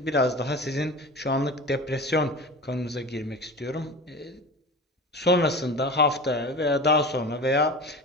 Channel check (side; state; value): both; normal; correlation 0.32